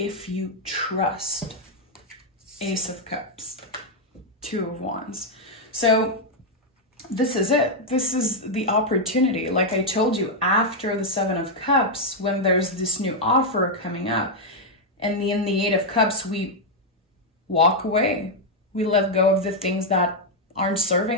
you trust. Ace of Cups, Two of Wands. So this is it. This is the opportunity. Like I told you, after the Seven of Cups, when there's this new offer coming up, and in the Eight of Cups, we walk away. We let go of the things that aren't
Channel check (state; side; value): normal; both; correlation -0.01